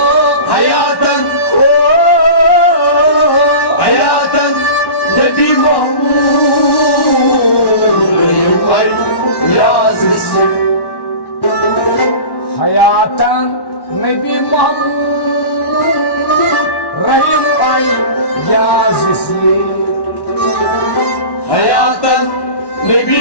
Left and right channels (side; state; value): right; late; 1.1 ms